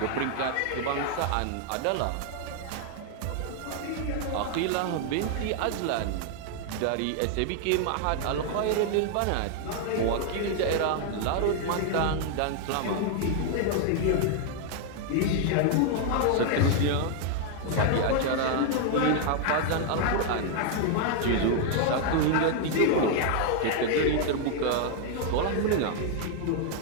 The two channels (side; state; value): both; different; correlation 0.00